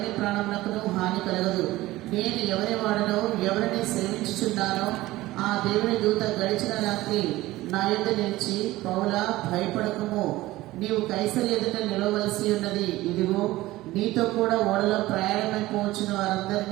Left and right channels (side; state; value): left; quieter; 17.6 dB